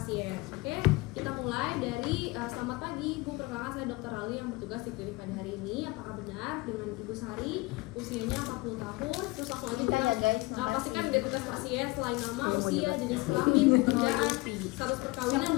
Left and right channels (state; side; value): quieter; right; 23.0 dB